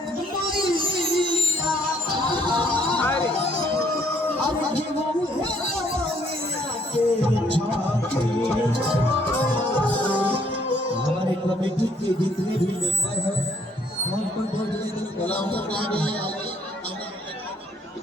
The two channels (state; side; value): normal; both; correlation 0.66